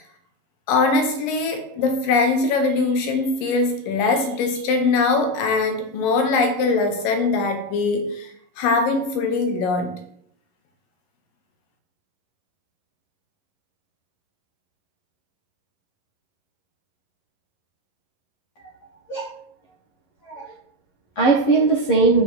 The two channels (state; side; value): late; right; 11 ms